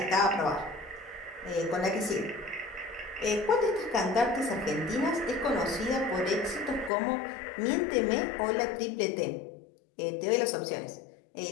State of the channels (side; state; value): right; drops out; at 6.9 s